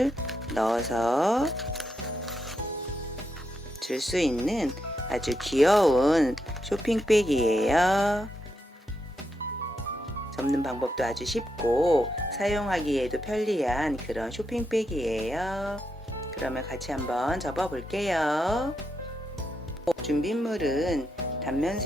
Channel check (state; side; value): normal; both; correlation 0.83